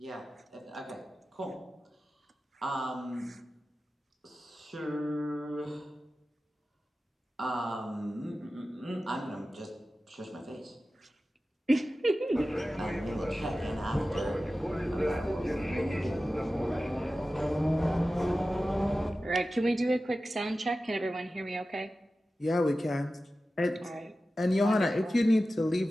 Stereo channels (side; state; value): both; normal; correlation 0.94